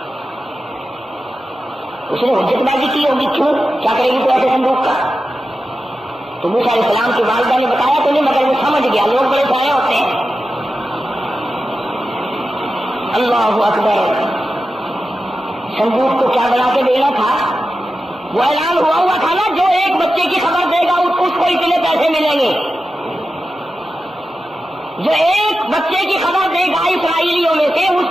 اس نے حجت بازی کی ہوگی، کیوں کیا کرے گی تو ایسے صندوق کا؟ تو موسیٰ علیہ السلام کی والدہ نے بتایا تو نہیں، مگر وہ سمجھ گیا، لوگ بڑے سارے ہوتے ہیں۔ اللہ اکبر، صندوق کو کیا بنا کے دینا تھا؟ وہ اعلان ہوا تھا نا، جو ایک بچے کی خبر دے گا اس کو اتنے پیسے ملیں گے، جو ایک بچے کی خبر دے گا اسرائیلیوں میں سے اس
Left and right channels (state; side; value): normal; both; correlation 0.92